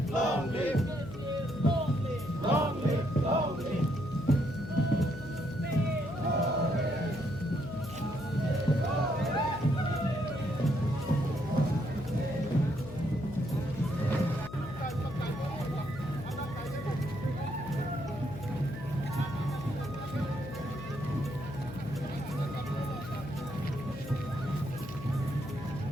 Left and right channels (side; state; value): left; noise; hum, 12 dB below the sound